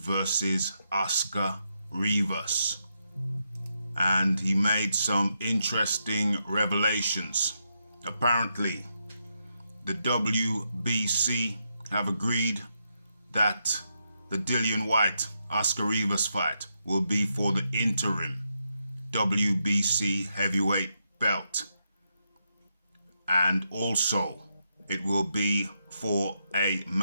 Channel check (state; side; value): inverted; both; correlation -0.82